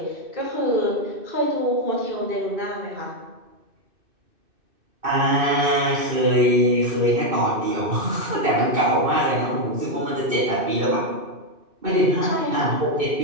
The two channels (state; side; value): late; left; 2.6 ms